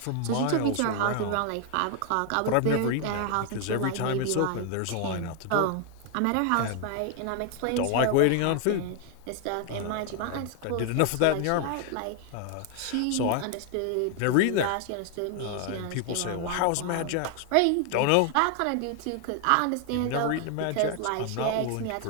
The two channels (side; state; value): both; different; correlation 0.00